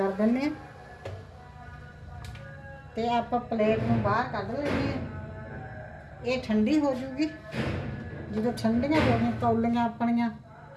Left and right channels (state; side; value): identical; both; correlation 1.00